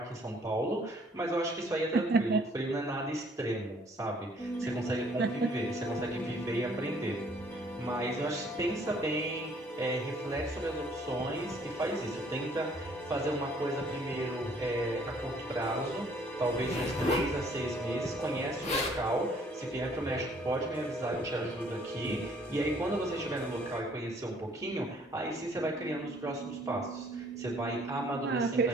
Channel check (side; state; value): both; normal; correlation 0.60